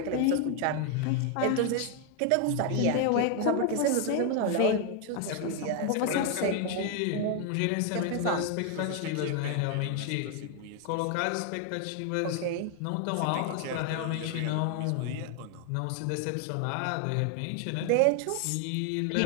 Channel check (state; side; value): different; both; correlation 0.01